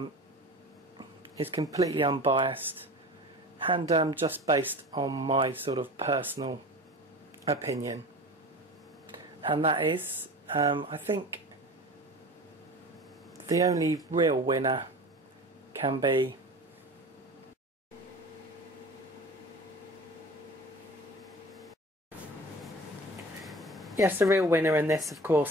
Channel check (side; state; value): both; normal; correlation 0.36